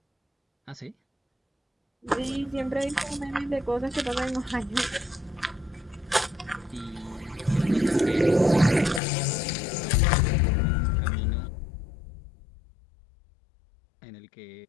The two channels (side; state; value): right; drops out; at 9.0 s